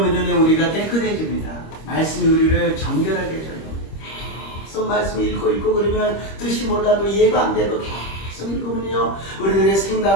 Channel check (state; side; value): late; right; 25 ms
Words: 우리가 깨끗해집니다. 말씀이 우리를 정결하게 해줘요. 계속 말씀을 읽고 그러면 뜻이 몰라도 이해가 안 돼도 계속 읽으면요 우리들의